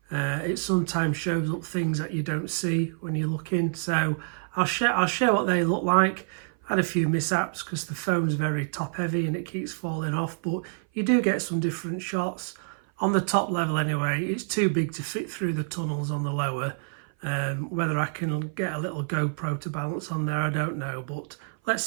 It sometimes shows up things that you don't see when you're looking, so I'll share what they look like. I had a few mishaps because the phone's very top heavy and it keeps falling off, but you do get some different shots. On the top level anyway, it's too big to fit through the tunnels on the lower. Whether I can get a little GoPro to balance on there, I don't know, but let's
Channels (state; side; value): silent; left; 57 dB below the other